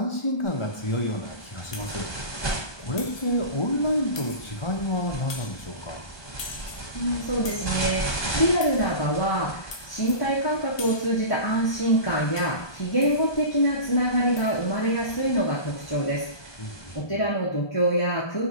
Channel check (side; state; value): right; late; 1.2 ms